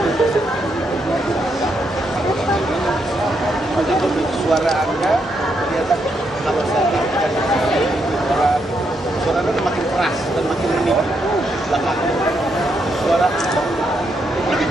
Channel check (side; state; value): both; normal; correlation 0.79